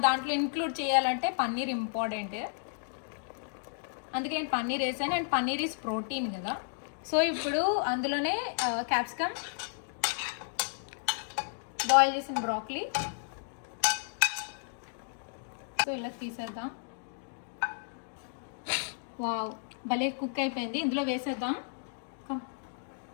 దాంట్లో ఇంక్లూడ్ చేయాలంటే పన్నీర్ ఇంపార్టెంట్, అందుకే నేను పన్నీర్ వేసాను. అండ్ పన్నీర్ ఈజ్ ప్రోటీన్ కదా. సో ఇప్పుడు అందులోనే క్యాప్సికమ్, బాయిల్ చేసిన బ్రాక్లీ, సో ఇలా తీసేద్దాం. వావ్, భలే కుక్ అయిపోయింది. ఇందులో వేసేద్దాం,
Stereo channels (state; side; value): silent; right; digital silence